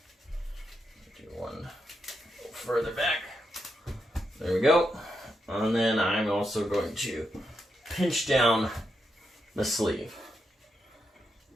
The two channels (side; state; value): both; normal; correlation 0.83